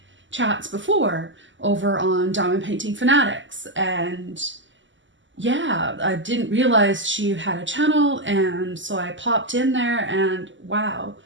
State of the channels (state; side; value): late; left; 0.55 ms